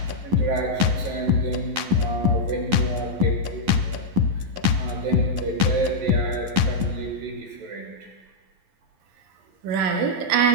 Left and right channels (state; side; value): late; left; 11 ms